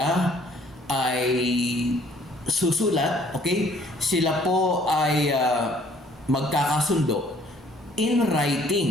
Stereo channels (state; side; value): normal; both; correlation 0.59